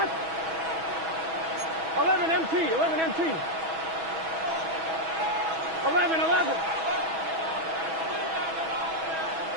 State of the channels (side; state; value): left; late; 6.2 ms